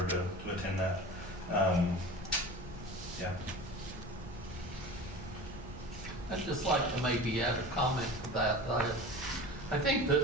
to attend that. Yeah. I'd just like to maybe add a comment to that. I think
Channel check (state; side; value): normal; both; correlation 0.35